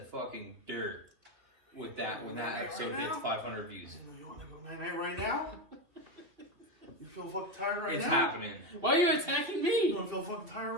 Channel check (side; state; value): left; late; 2.8 ms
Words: fucking dirt with that when that episode hits 500 views. You want to go night-night right now? You feel fucking tired right It's now? happening. Why are you attacking You me? don't feel fucking tired